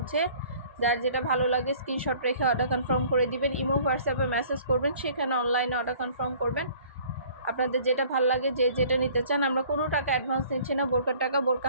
যার যেটা ভালো লাগে স্ক্রিনশট রেখে অর্ডার কনফার্ম করে দিবেন। ইমো হোয়াটসঅ্যাপে মেসেজ করবেন, সেখানে অনলাইনে অর্ডার কনফার্ম করবেন। আপনাদের যেটা ভালো লাগে, যে যেটা নিতে চান, আমরা কোনো টাকা অ্যাডভান্স নিচ্ছি না। বোরকার টাকা বোরকা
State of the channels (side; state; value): both; inverted; correlation -0.52